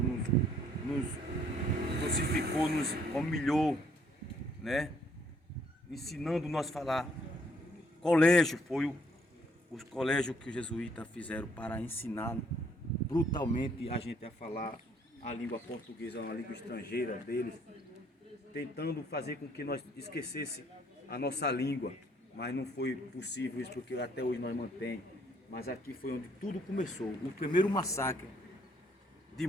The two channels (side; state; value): both; normal; correlation 0.65